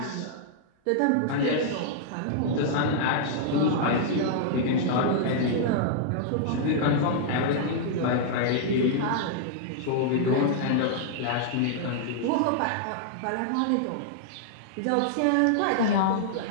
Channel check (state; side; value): different; both; correlation -0.01